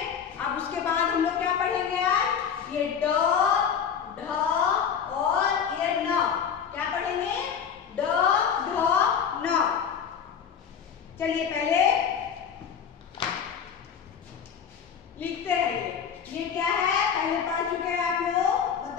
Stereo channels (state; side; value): quieter; right; 7.5 dB